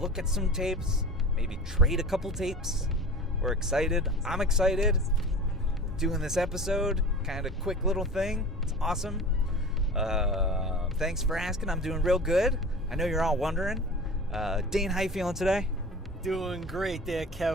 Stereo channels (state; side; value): normal; both; correlation 0.37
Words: look at some tapes. Maybe trade a couple tapes. We're excited. I'm excited. Doing this episode. Kind of quick little thing. It's awesome. Thanks for asking. I'm doing real good. I know you're all wondering. Dane, how you feeling today? Doing great there,